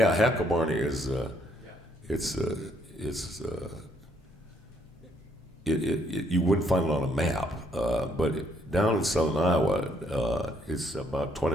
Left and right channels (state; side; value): normal; both; correlation 0.70